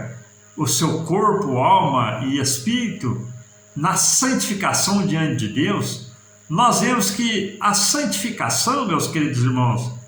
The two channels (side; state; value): both; identical; correlation 1.00